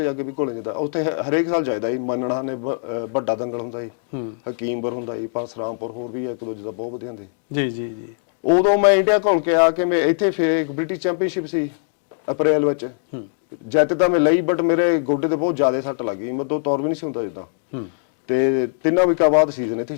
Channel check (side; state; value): right; silent; digital silence